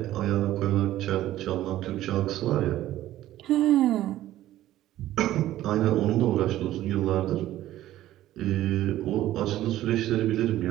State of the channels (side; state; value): left; quieter; 14.1 dB